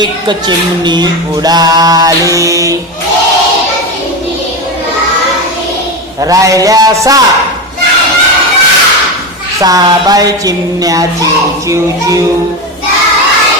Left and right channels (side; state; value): both; normal; correlation 0.18